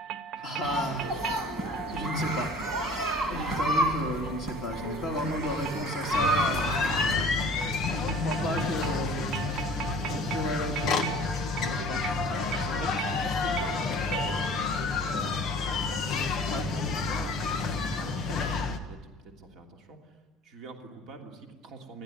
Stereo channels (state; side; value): normal; both; correlation 0.47